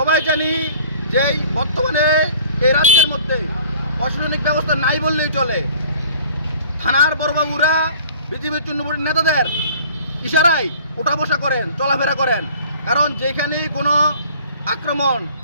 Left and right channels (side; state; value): both; inverted; correlation -0.49